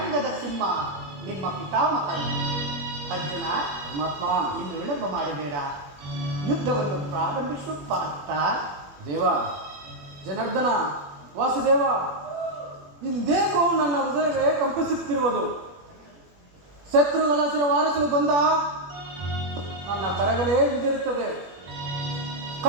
ಸಿಂಹ ನಿಮ್ಮ ಪಿತಾಮಹ. ಅರ್ಜುನ, ಪರಮಾತ್ಮ, ಇನ್ನು ವಿಳಂಬ ಮಾಡಬೇಡ, ಯುದ್ಧವನ್ನು ಪ್ರಾರಂಭಿಸುವ ಪಾರ್ಥ. ದೇವ, ಜನಾರ್ದನ, ವಾಸುದೇವ, ಇಂದೇಕೋ ನನ್ನ ಹೃದಯವೇ ಕಂಪಿಸುತ್ತಿರುವುದು. ಶತ್ರುಗಳ ವಾರಿಸಲು ಬಂದ ನನ್ನ ಕರಗಳೇ ಹಿಂದಿರುತ್ತದೆ.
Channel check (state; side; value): late; left; 21 ms